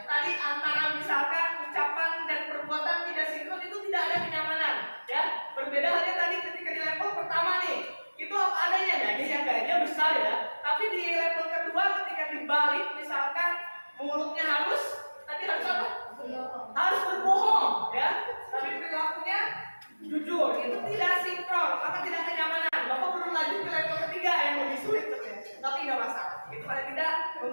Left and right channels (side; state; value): both; inverted; correlation -1.00